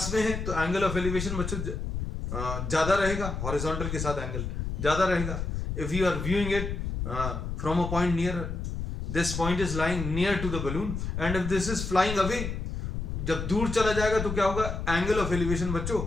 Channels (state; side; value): noise; left; rumble, 4 dB below the sound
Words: में है तो एंगल ऑफ एलिवेशन बच्चों ज्यादा रहेगा, हॉरिजॉन्टल के साथ एंगल ज्यादा रहेगा. If you are viewing it from a point near, this point is lying near to the balloon, and if this is flying away, जब दूर चला जाएगा तो क्या होगा? एंगल ऑफ एलिवेशन बच्चों